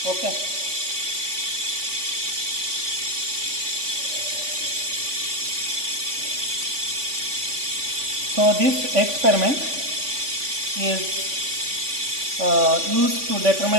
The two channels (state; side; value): late; left; 3.5 ms